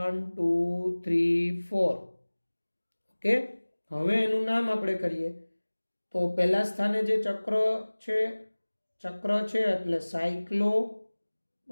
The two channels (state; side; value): inverted; both; correlation -1.00